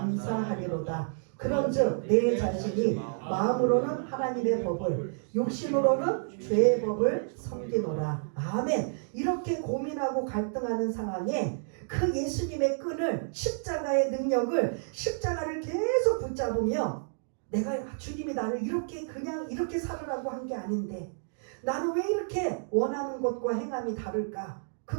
그런즉 내 자신이 마음으로는 하나님의 법을 육신으로는 죄의 법을 섬기노라. 아멘. 이렇게 고민하고 갈등하는 상황에 그 예수님의 끈을 십자가의 능력을 십자가를 계속 붙잡으며 내가 주님이 나를 이렇게 그냥 이렇게 살으라고 한 게 아닌데 나는 왜 이렇게 원하는 것과 행함이 다를까?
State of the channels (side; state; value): left; silent; digital silence